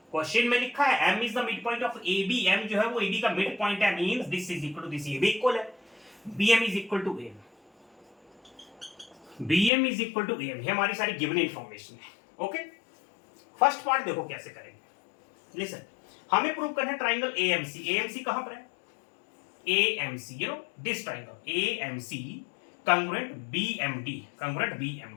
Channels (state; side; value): drops out; right; at 9.7 s